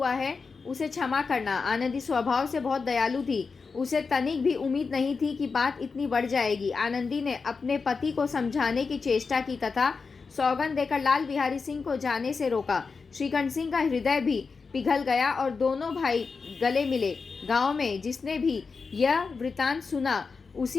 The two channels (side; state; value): right; quieter; 4.8 dB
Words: है उसे क्षमा करना। आनंदी स्वभाव से बहुत दयालु थी। उसे तनिक भी उम्मीद नहीं थी कि बात इतनी बढ़ जाएगी। आनंदी ने अपने पति को समझाने की चेष्टा की तथा सौगंध देकर लाल बिहारी सिंह को जाने से रोका। श्रीकंठ सिंह का हृदय भी पिघल गया और दोनों भाई गले मिले। गांव में जिसने भी यह वृतांत सुना,